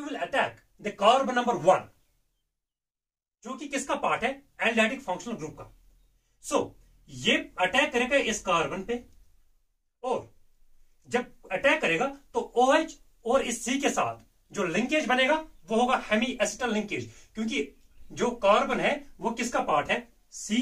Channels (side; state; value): both; identical; correlation 1.00